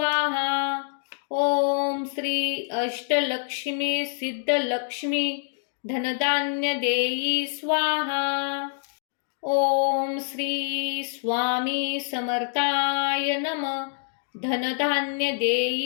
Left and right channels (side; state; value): right; silent; digital silence